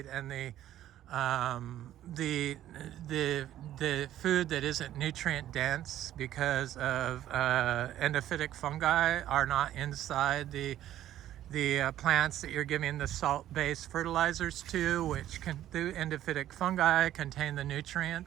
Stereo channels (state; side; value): quieter; left; 12.5 dB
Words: and the food that isn't nutrient dense because of endophytic fungi are not inside the plants that you're giving the salt-based fertilizers to, which the endophytic fungi contain the